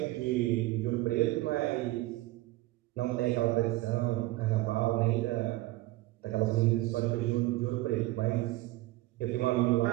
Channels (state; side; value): quieter; left; 18.6 dB